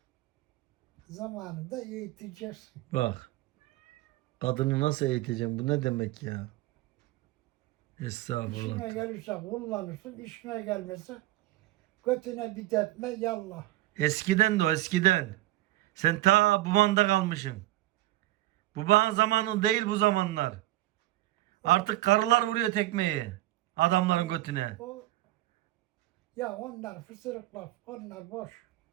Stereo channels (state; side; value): quieter; left; 16.8 dB